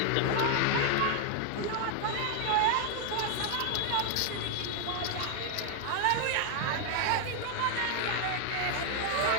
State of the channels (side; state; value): both; different; correlation 0.00